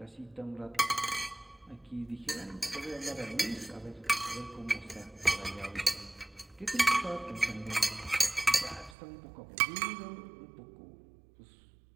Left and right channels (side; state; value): left; drops out; at 9.0 s